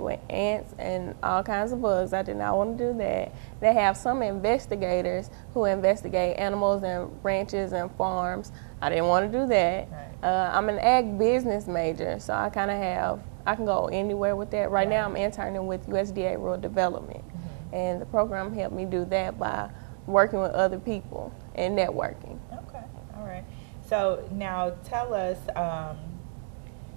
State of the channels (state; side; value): silent; left; digital silence